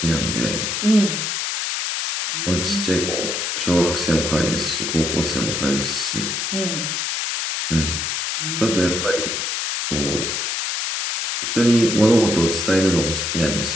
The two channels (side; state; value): left; noise; hiss, 1 dB below the sound